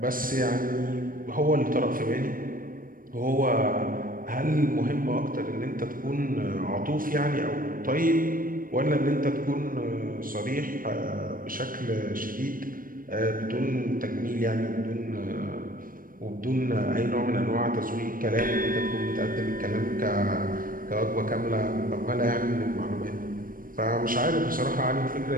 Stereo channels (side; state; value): left; late; 0.41 ms